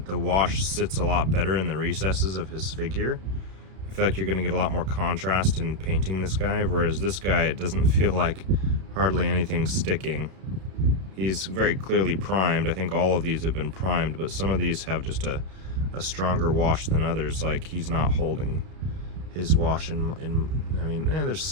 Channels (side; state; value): left; late; 32 ms